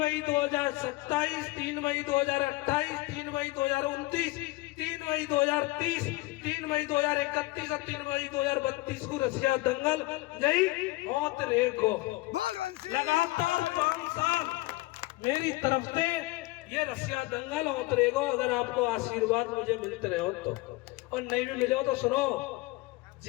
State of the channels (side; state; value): right; quieter; 20.9 dB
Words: 2027, 3 मई 2028, 3 मई 2029, 3 मई 2030, 3 मई 2031 और 3 मई 2032 को रसिया दंगल नहीं होत रेको लगातार 5 साल मेरी तरफ से ये रसिया दंगल होत रहेगा। अगर आपको आशीर्वाद मुझे मिलते रहे हो तो, और नहीं भी मिले हो तो सुनो,